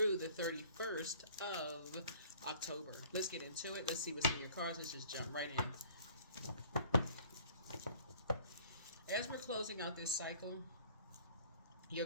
the 31st of October. Let's get into it. Let's see what's in your cards. Let's just jump right in. As we're closing out this cycle, your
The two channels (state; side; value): inverted; both; correlation -0.52